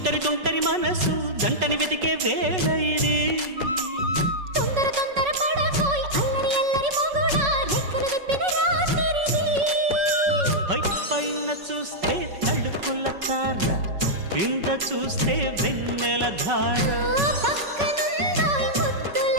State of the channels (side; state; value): left; late; 5.3 ms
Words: తుంటరి మనసు జంటని వెతికే వేళ ఇది తొందర తొందర పడకోయ్ అల్లరి అల్లరి మొగుడా రెక్కలు విప్పిన రాత్రిది పైన చూస్తే తడుకుల తార కింద చూస్తే వెన్నెల ధార పక్కనుందోయ్ ముద్దుల